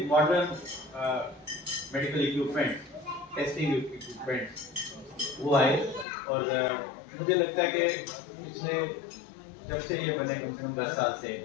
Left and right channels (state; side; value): drops out; right; at 6.1 s